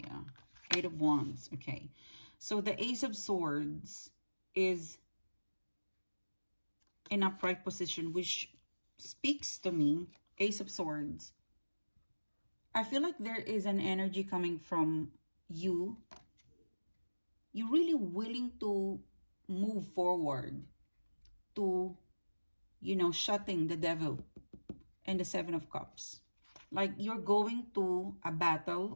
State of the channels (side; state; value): both; inverted; correlation -1.00